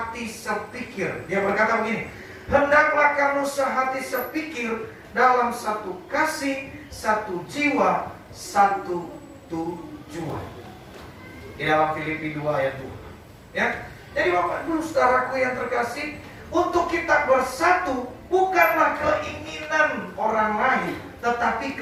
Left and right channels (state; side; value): identical; both; correlation 1.00